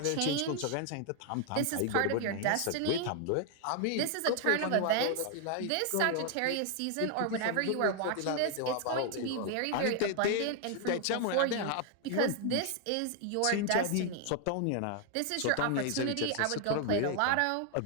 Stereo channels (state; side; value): different; both; correlation 0.00